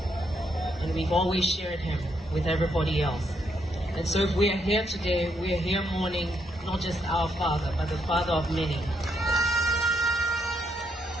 and we've always shared him with everybody else. And so if we are here today, we are here mourning not just our father, but the father of many.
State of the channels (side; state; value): both; normal; correlation 0.77